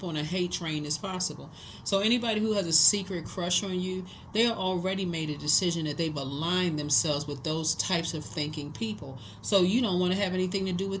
on a hate train as possible. So anybody who has a secret crush on you, they are already made a decision that they've aligned themselves with those types of thinking people. So you don't want to have anything to do with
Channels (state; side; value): identical; both; correlation 1.00